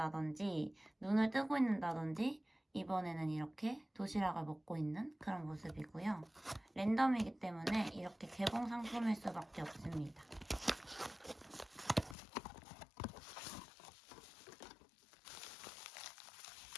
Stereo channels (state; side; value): drops out; right; at 12.2 s